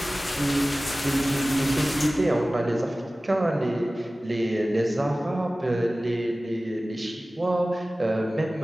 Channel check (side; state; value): both; normal; correlation 0.97